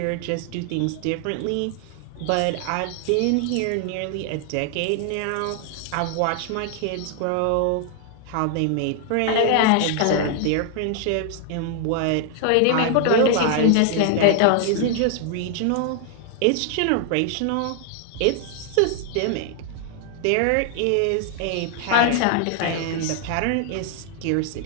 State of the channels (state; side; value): different; both; correlation 0.00